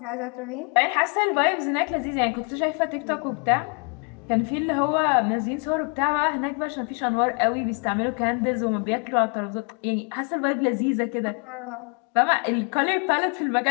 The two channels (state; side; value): quieter; right; 38.3 dB